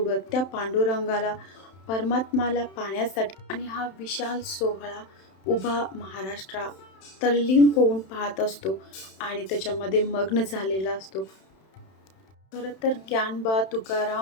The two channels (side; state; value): right; late; 31 ms